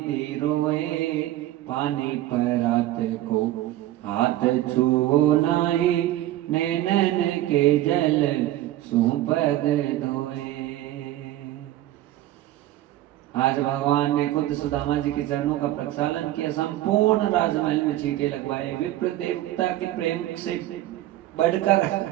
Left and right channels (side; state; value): left; quieter; 14.7 dB